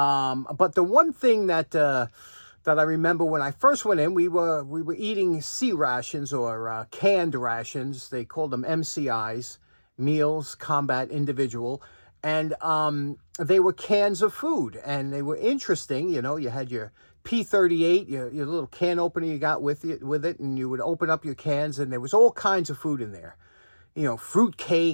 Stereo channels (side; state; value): both; inverted; correlation -1.00